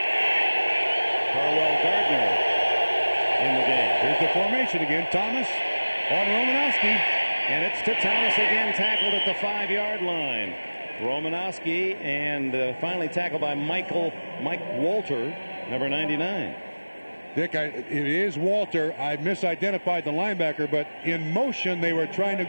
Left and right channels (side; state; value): both; inverted; correlation -1.00